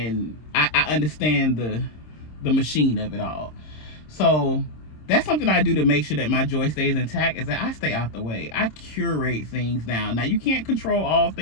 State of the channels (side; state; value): right; late; 26 ms